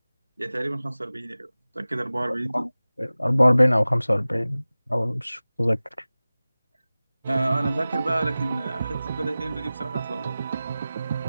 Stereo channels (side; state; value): both; inverted; correlation -0.97